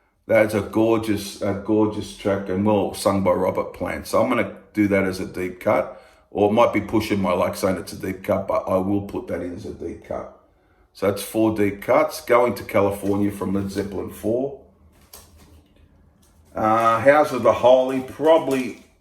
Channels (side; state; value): both; identical; correlation 1.00